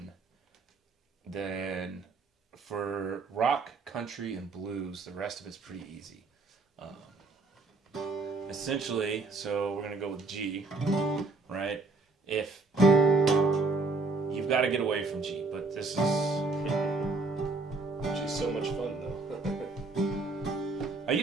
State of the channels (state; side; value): quieter; left; 3.7 dB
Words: then for rock, country, and blues, the rest of it's pretty easy. Essentially, so we're gonna go with G, right? If you've got to get away from G, but this is G's so much fun though. You